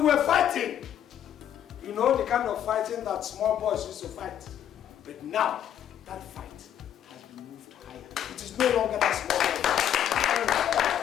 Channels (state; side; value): quieter; right; 10.2 dB